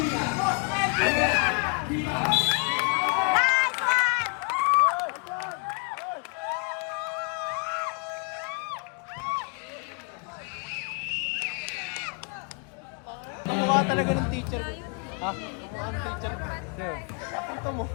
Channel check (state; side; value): quieter; right; 36.3 dB